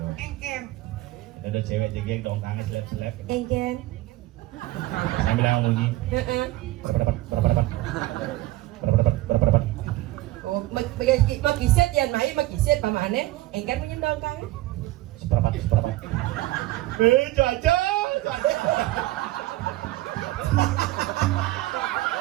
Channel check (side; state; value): left; quieter; 17.6 dB